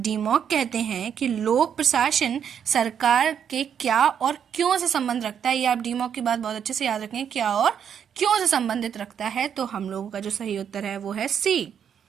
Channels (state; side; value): quieter; left; 8.2 dB